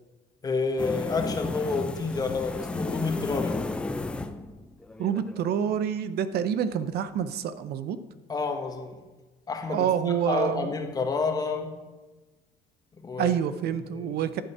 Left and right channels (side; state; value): both; normal; correlation 0.44